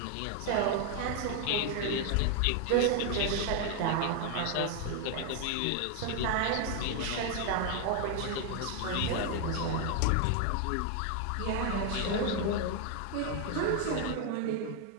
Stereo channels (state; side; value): different; both; correlation 0.01